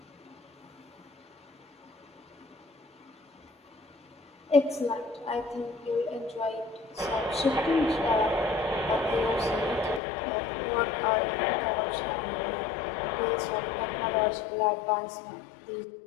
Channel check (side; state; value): right; drops out; at 10.0 s